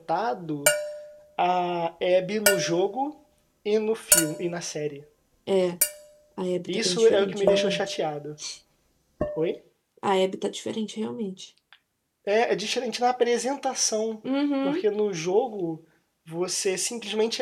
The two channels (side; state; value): both; identical; correlation 1.00